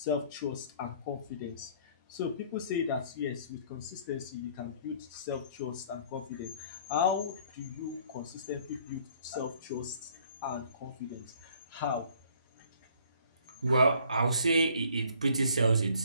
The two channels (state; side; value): inverted; both; correlation -0.58